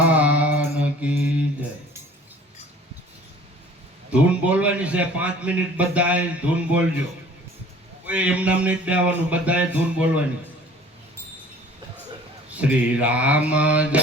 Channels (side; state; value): both; normal; correlation 0.50